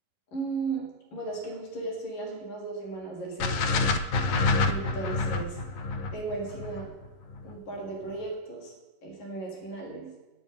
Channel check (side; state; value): right; late; 11 ms